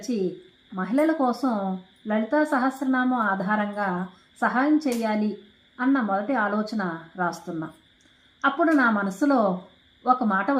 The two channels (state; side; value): identical; both; correlation 1.00